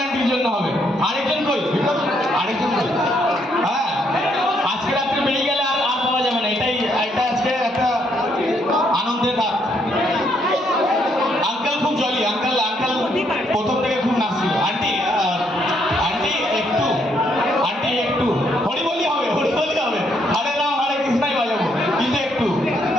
আন্টির জন্য হবে। আরেকজন কই? আরেকজন কই? হ্যাঁ, আজকে রাত্রে বেরিয়ে গেলে আর পাওয়া যাবে না। এটা আজকে একটা আনন্দের রাত। আঙ্কেল খুব জলি, আঙ্কেল প্রথম থেকে খুব নাচছিল। আন্টি একটু হরি বলি হবে, হরে রাম হরে কৃষ্ণাই বাজাবো, কিন্তু একটু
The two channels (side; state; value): both; normal; correlation 0.72